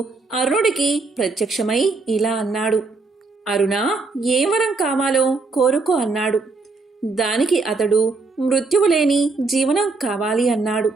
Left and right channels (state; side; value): quieter; left; 3.9 dB